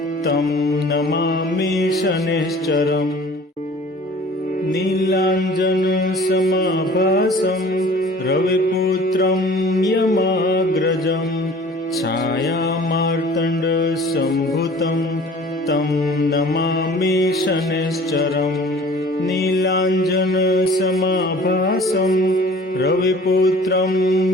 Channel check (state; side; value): normal; both; correlation 0.47